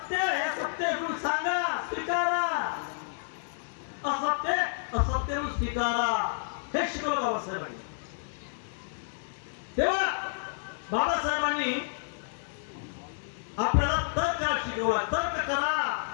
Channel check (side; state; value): right; silent; digital silence